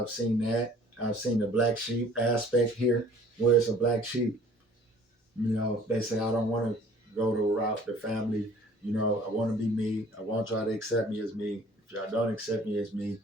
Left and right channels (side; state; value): both; normal; correlation 0.52